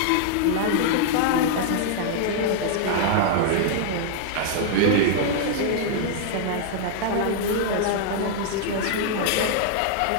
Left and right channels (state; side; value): different; both; correlation -0.01